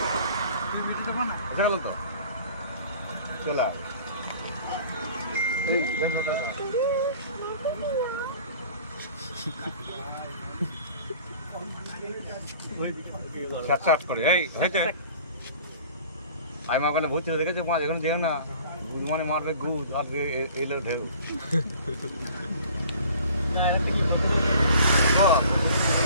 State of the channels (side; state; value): both; inverted; correlation -0.48